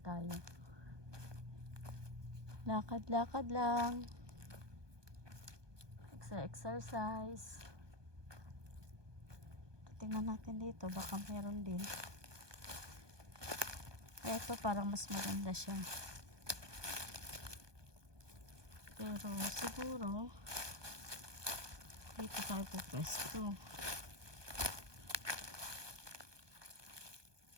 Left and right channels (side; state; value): left; late; 1.2 ms